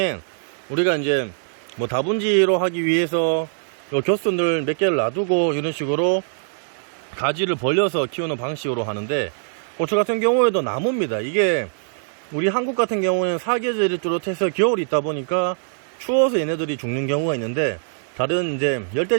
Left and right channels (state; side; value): silent; left; digital silence